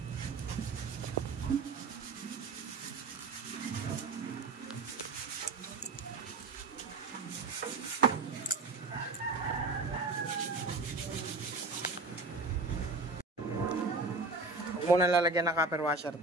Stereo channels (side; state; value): left; quieter; 3.5 dB